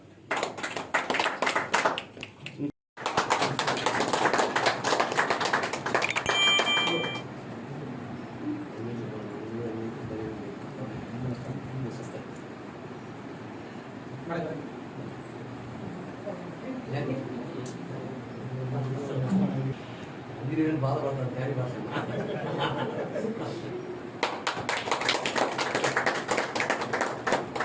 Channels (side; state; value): both; identical; correlation 1.00